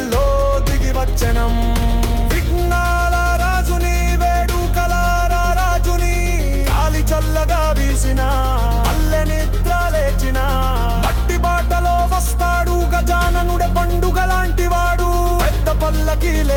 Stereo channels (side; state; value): both; identical; correlation 1.00